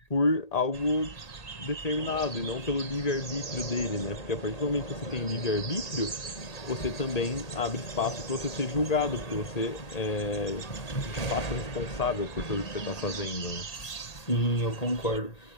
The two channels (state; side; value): late; right; 1.8 ms